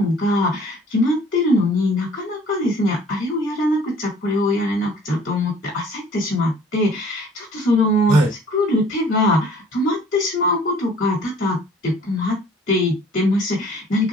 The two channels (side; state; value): both; normal; correlation 0.53